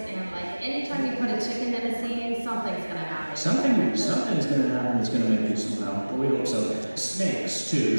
and like anytime you put a chicken in a scene, something's gonna happen. Something's gonna happen that's gonna make you smile. But we hope so. Snakes too.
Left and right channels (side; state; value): both; inverted; correlation -1.00